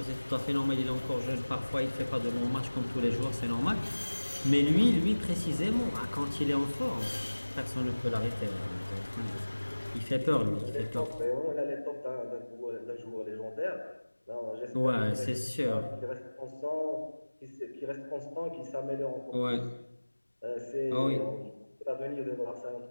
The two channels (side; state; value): both; inverted; correlation -1.00